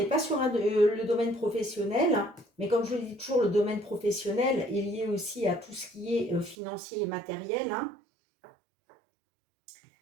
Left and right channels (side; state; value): left; drops out; at 6.6 s